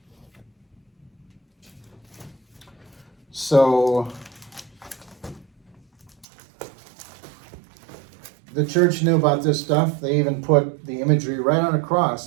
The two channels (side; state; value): left; drops out; at 6.2 s